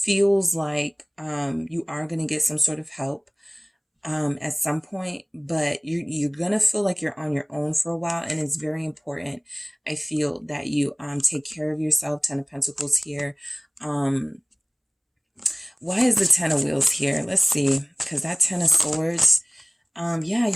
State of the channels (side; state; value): both; identical; correlation 1.00